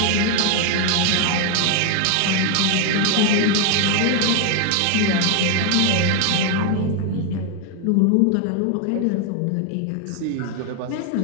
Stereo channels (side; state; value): both; different; correlation 0.01